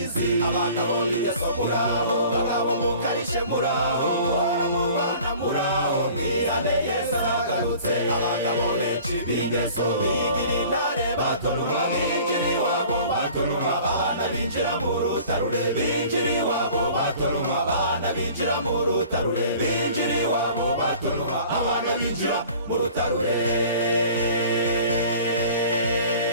abagabo b'ingeso muraho ababo mukarishe muraho muhora mubana muraho mwihane Yesu aragarutse abagabo benshi b'ingeso bigira intare batonuma binjira iwabo batonuma abana binjira mu rutarure binjira iwabo batonuma abana binjira mu rutarure binjira iwabo batonuma abana binjira mu rutarure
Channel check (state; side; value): inverted; both; correlation -0.47